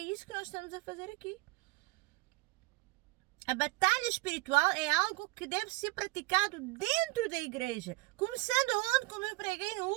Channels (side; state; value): left; quieter; 23.3 dB